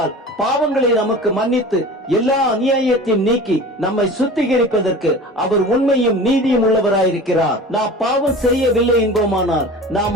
பாவங்களை நமக்கு மன்னித்து எல்லா அநியாயத்தையும் நீக்கி நம்மை சுத்திகரிப்பதற்கு அவர் உண்மையும் நீதியும் உள்ளவராயிருக்கிறார். நாம் பாவம் செய்யவில்லை என்போமானால்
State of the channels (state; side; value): normal; both; correlation 0.37